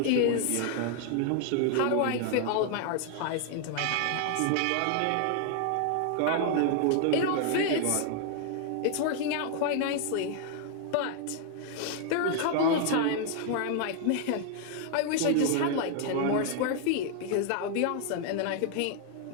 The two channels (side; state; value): both; different; correlation 0.00